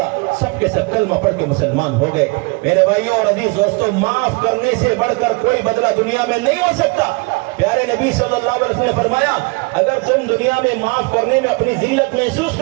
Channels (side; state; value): left; quieter; 28.4 dB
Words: سب کے سب کلمہ پڑھ کے مسلمان ہو گئے۔ میرے بھائیوں اور عزیز دوستوں، معاف کرنے سے بڑھ کر کوئی بدلہ دنیا میں نہیں ہو سکتا۔ پیارے نبی صلی اللہ علیہ وسلم نے فرمایا اگر تم دنیا میں معاف کرنے میں اپنی ذلت محسوس